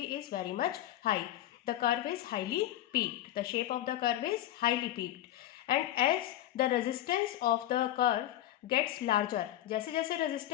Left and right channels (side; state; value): right; quieter; 13.3 dB